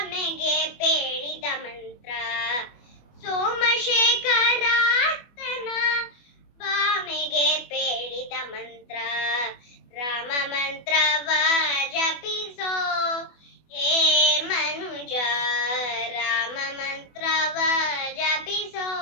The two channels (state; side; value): late; right; 24 ms